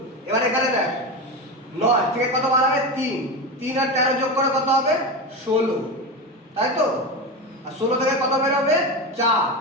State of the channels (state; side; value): normal; both; correlation 0.20